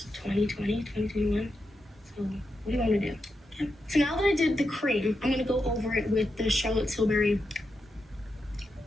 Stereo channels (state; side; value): normal; both; correlation 0.86